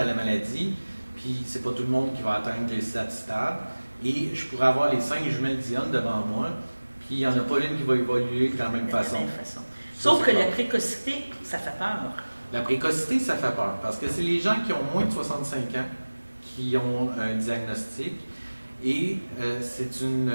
la maladie, puis c'est pas tout le monde qui va atteindre les 7 stades. Et je pourrais avoir les 5 jumelles Dionne devant moi, puis il n'y en a pas une qui va évoluer de la même façon. Sauf que la précocité, ça fait peur. La précocité, ça fait peur, parce que c'est les gens qui ont moins de 65 ans qui ont un diagnostic. Et c'est une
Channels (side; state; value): both; inverted; correlation -1.00